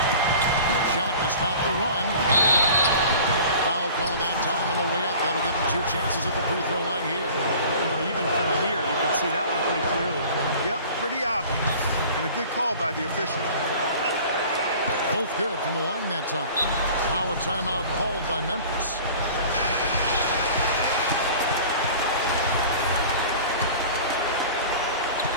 Shot to stop the run. Foul call that time on the way up. That'll give him 2 chances at the free throw line here. You know, even from here, you can see that one pretty clearly. Yep, pretty obvious. And a good call by the official. Both good from the line that time. Now a timeout called by Memphis.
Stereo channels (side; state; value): both; inverted; correlation -0.43